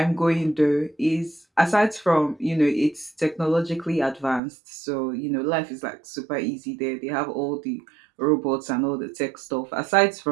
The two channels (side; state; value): left; drops out; at 4.4 s